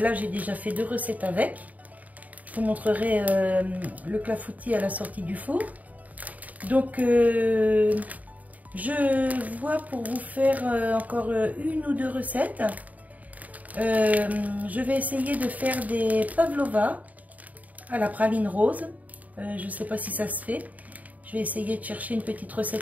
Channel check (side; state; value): left; late; 0.074 ms